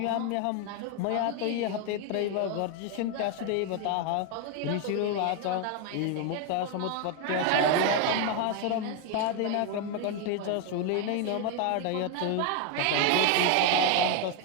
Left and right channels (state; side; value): different; both; correlation 0.01